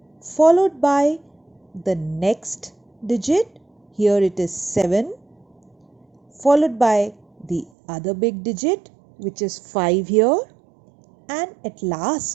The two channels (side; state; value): left; drops out; at 7.7 s